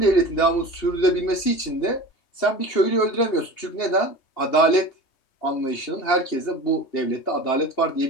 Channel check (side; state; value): right; late; 2.8 ms